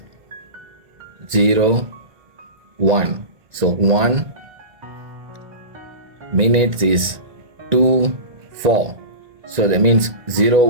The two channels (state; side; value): late; left; 1.9 ms